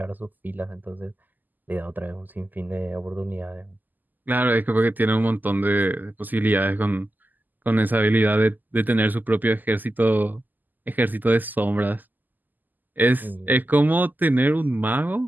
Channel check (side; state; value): left; late; 0.085 ms